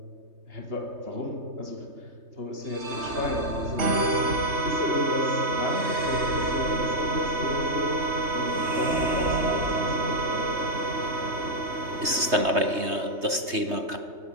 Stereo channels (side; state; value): left; late; 3.2 ms